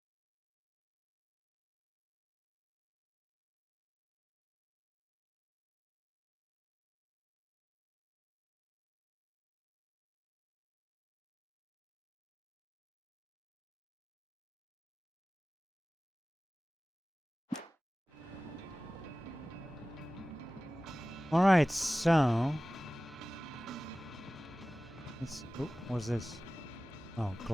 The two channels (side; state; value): both; normal; correlation 0.97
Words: Alright, so... oh, what's this? Oh,